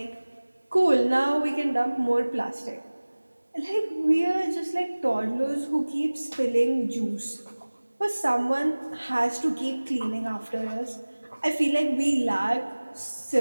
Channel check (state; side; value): inverted; both; correlation -1.00